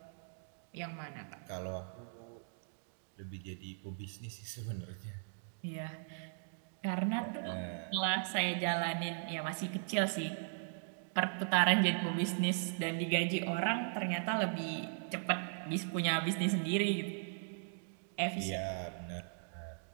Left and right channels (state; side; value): silent; left; digital silence